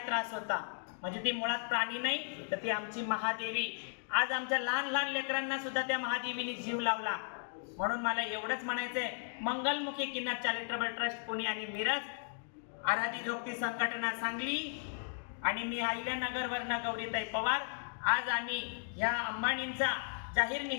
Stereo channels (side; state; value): right; silent; digital silence